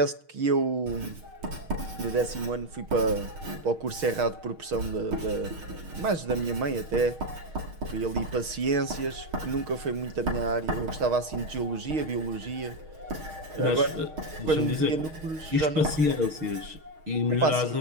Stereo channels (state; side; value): late; left; 6.4 ms